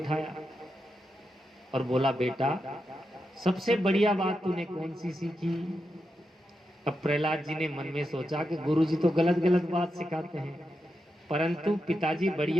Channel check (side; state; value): both; normal; correlation 0.87